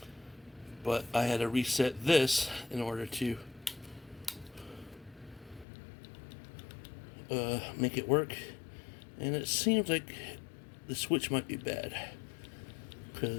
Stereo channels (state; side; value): drops out; right; at 5.7 s